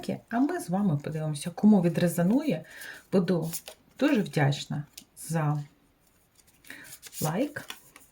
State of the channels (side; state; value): both; identical; correlation 1.00